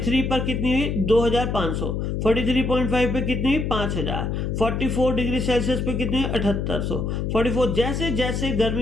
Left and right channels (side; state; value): left; noise; hum, 1 dB below the sound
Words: पर कितनी हुई? 2500। 43.5 पे कितनी हुई? 5000। 44 डिग्री सेल्सियस पे कितनी हुई? 7800। 44 जैसे जैसे